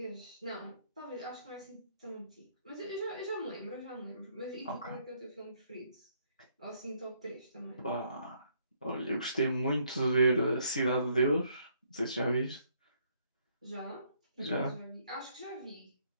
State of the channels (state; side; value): inverted; both; correlation -0.69